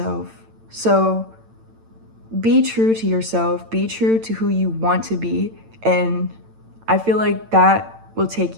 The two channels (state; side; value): late; left; 8.9 ms